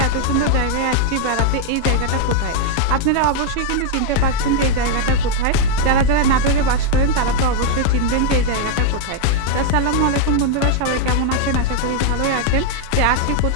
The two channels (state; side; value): different; both; correlation 0.00